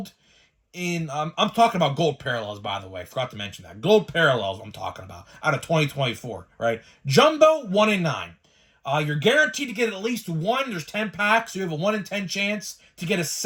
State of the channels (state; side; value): identical; both; correlation 1.00